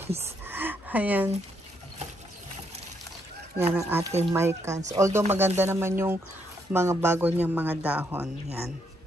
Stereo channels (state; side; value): normal; both; correlation 0.75